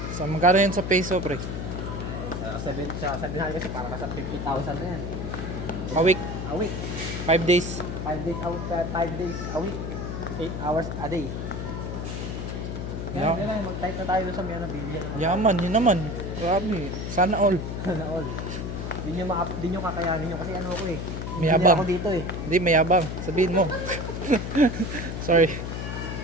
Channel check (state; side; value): noise; left; hum, 5 dB below the sound